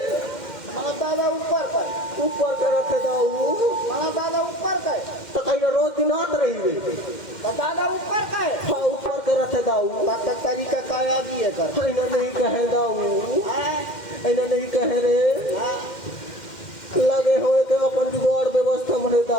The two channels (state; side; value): late; right; 2.1 ms